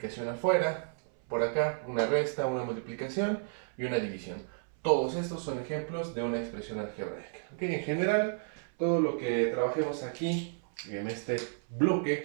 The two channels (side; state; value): left; silent; 56 dB below the other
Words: afuera, por acá una resta, una multiplicación y una división. Todos estos son ejemplos de una expresión algebraica. ¿Okay? En general, todo lo que trabajemos aquí en este